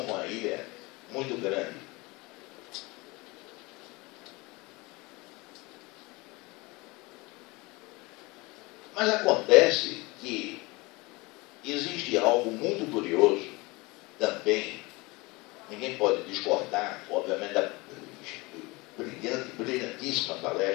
com a ilha muito grande. Mas acontece que existe algo muito curioso também, ninguém pode discordar, obviamente, da brilhantíssima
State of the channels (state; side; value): quieter; right; 24.2 dB